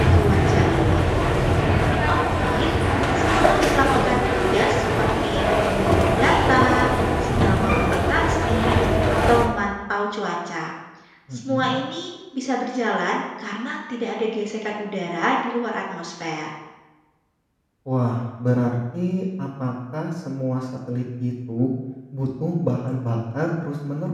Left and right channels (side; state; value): both; identical; correlation 1.00